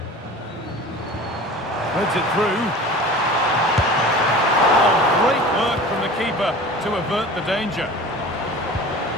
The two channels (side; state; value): both; normal; correlation 0.39